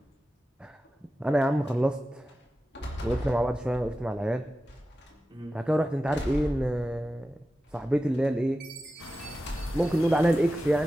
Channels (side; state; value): both; normal; correlation 0.93